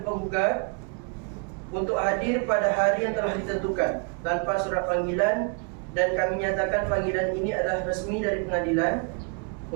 penggugat untuk hadir pada hari yang telah ditentukan tanpa surat panggilan, dan kami nyatakan panggilan ini adalah resmi dari pengadilan.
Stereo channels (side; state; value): left; quieter; 35.7 dB